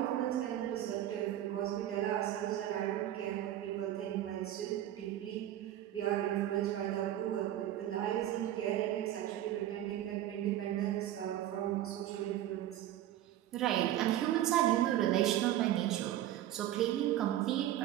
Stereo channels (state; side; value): quieter; left; 12.7 dB